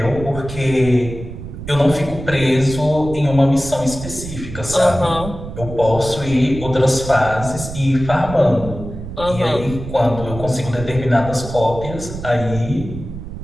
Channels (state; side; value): noise; right; rumble, 10 dB below the sound